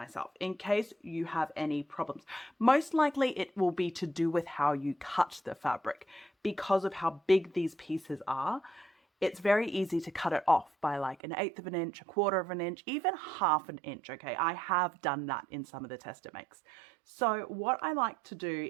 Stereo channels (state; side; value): drops out; left; at 11.2 s